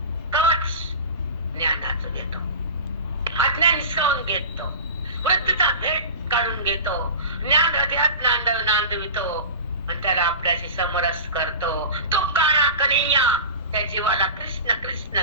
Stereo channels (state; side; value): inverted; both; correlation -0.31